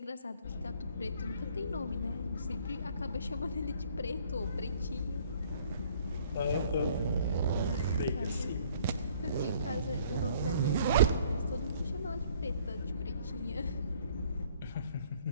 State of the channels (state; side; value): inverted; both; correlation -0.58